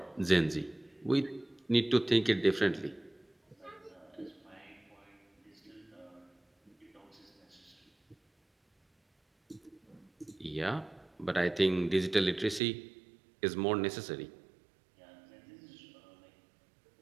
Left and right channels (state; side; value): drops out; left; at 12.6 s